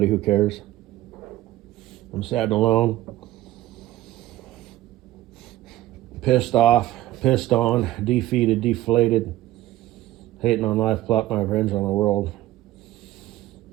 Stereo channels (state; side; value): quieter; left; 15.4 dB